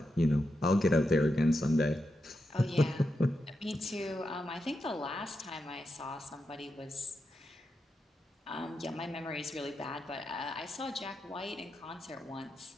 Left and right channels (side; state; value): both; normal; correlation 0.87